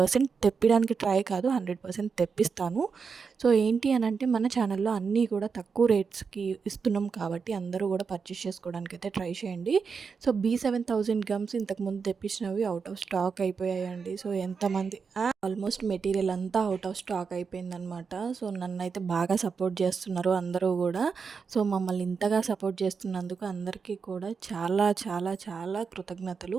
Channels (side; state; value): left; quieter; 5.6 dB